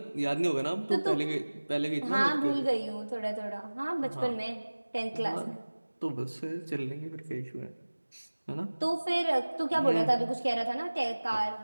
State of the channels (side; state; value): both; inverted; correlation -1.00